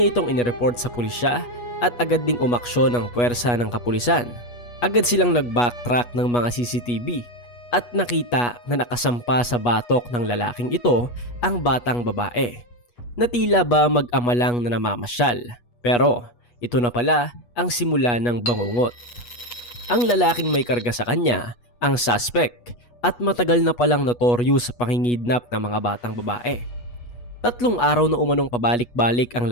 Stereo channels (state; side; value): late; right; 8.3 ms